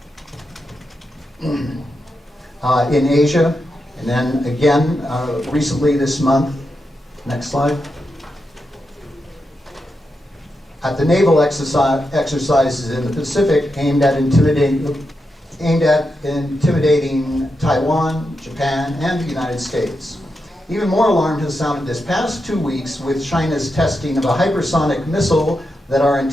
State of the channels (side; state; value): both; normal; correlation 0.87